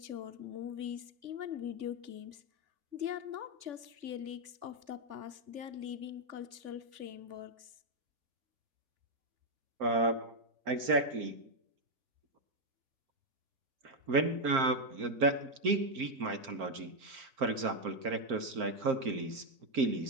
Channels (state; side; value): late; left; 3.5 ms